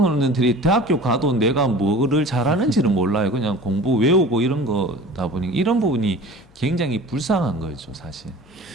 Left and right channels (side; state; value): left; noise; hum, 28 dB below the sound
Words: 대학교 가도 내가 뭐를 잘하는지를 몰라요. 그냥 공부 외우고 이런 거다 보니 이런 부분이 굉장히 불쌍한 거죠, 사실.